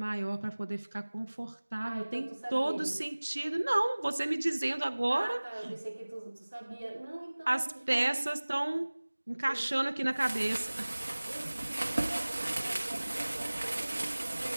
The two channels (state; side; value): inverted; both; correlation -1.00